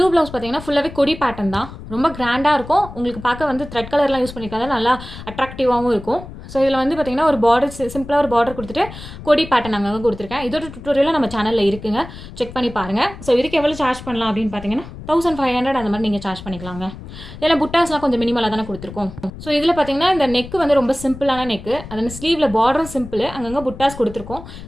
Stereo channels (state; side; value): noise; left; rumble, 14 dB below the sound